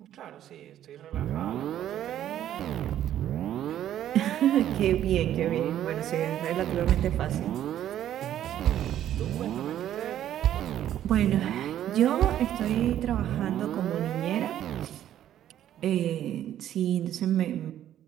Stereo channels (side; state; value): left; quieter; 11.5 dB